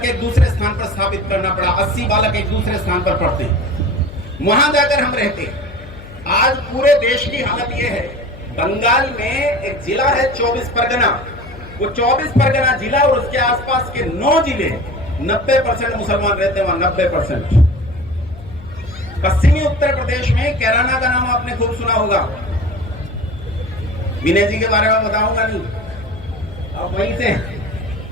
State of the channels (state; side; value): noise; left; hum, 17 dB below the sound